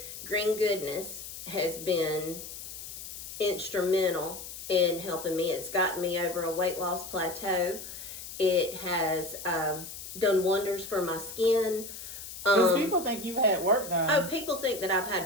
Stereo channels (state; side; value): noise; left; hiss, 11 dB below the sound